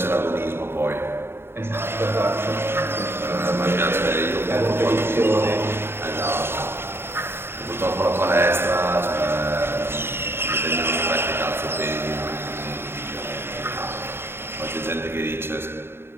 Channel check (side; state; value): left; late; 0.11 ms